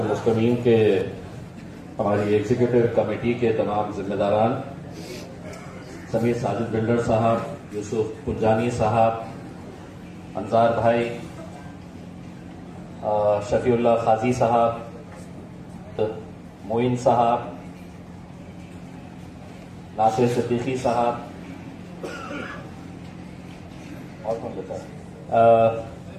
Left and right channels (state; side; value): identical; both; correlation 1.00